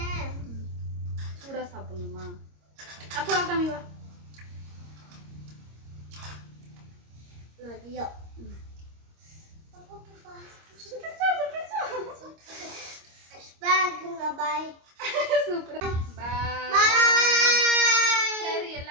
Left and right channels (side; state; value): left; late; 26 ms